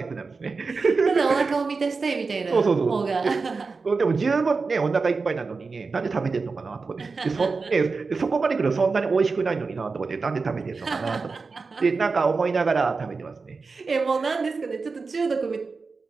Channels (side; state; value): left; quieter; 4.4 dB